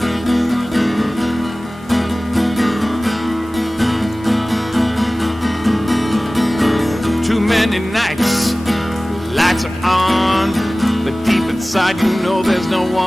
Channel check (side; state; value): both; normal; correlation 0.98